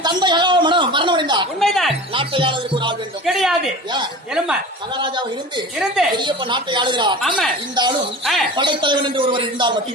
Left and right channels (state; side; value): normal; both; correlation 0.35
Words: தந்தை மரணமடைந்தார். உண்மைதான். நாட்டை ஆளுவதற்கு ஒரு ஆள் வேண்டும். கிடையாது. ஏன்? எலும்பா மகாராஜாவை இருந்து இருந்து பெரியப்ப நாட்டை ஆளுகிறார். ஆமா. இந்த ஆளும் ஆ. படைத்தலைவன் என்று ஒருவர் இருந்தால்